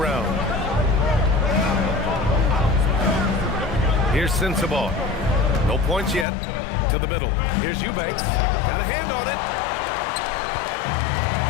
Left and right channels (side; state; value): right; drops out; at 6.2 s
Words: Here's Sensabaugh. No points yet. To the middle. Here's Eubanks. Got a hand on it.